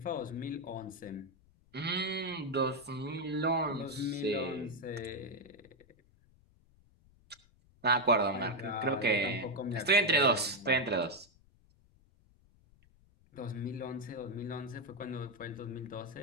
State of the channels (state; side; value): noise; left; rumble, 29 dB below the sound